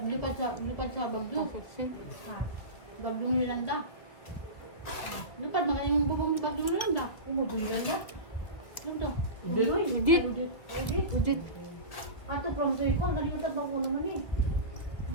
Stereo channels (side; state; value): right; late; 2.1 ms